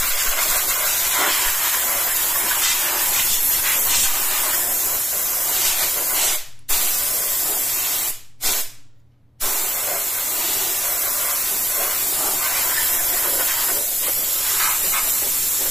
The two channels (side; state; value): both; normal; correlation 0.95